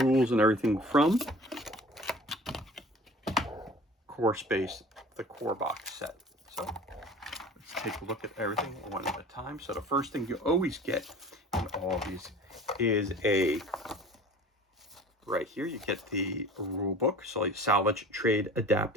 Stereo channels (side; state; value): both; normal; correlation 0.43